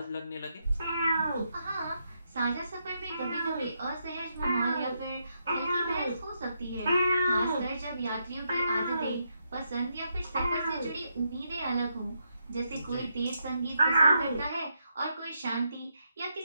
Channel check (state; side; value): inverted; both; correlation -0.80